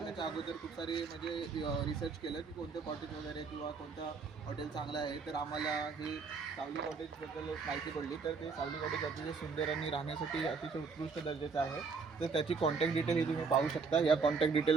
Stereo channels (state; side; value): quieter; left; 4.9 dB